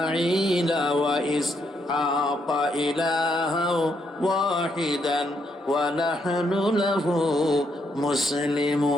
ওয়া ইসহাক ইলাহাও ওয়াহিদান ওয়া নাহনু লাহু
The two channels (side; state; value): both; normal; correlation 0.76